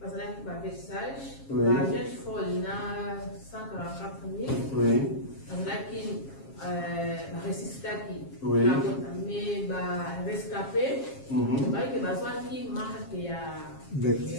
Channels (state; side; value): late; right; 7.4 ms